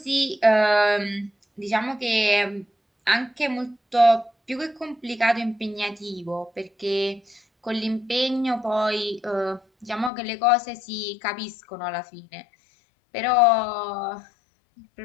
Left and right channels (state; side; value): drops out; right; at 10.1 s